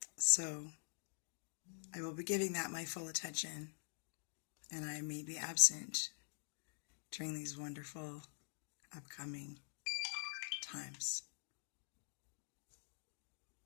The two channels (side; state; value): right; silent; digital silence